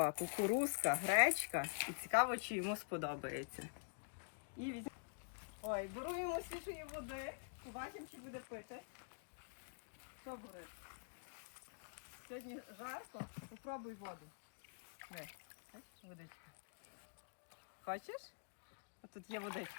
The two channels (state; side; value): silent; right; digital silence